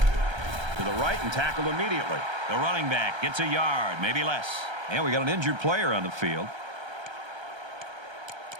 To the right and tackled immediately. The running back gets a yard, maybe less. And we got an injured player on the field.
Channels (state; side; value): late; left; 1.3 ms